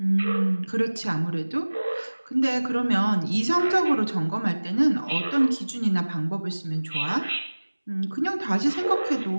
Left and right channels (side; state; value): both; inverted; correlation -1.00